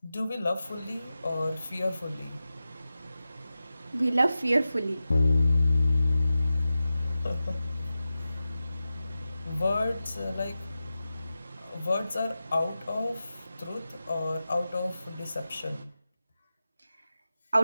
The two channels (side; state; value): both; inverted; correlation -0.93